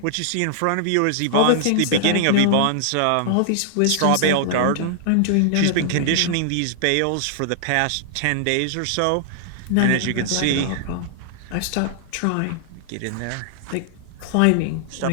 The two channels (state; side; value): different; both; correlation -0.01